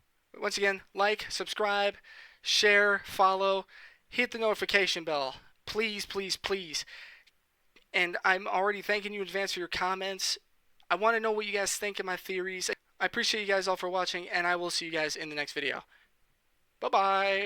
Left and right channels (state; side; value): identical; both; correlation 1.00